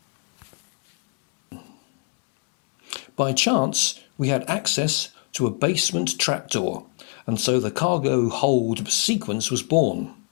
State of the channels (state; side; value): quieter; right; 37.1 dB